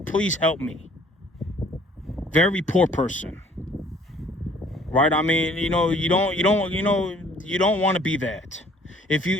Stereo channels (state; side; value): normal; both; correlation 0.57